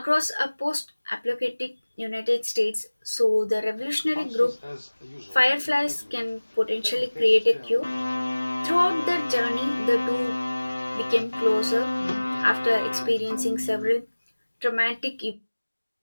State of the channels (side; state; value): both; inverted; correlation -1.00